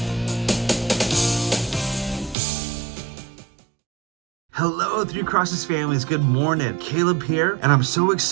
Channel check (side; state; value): left; drops out; at 2.4 s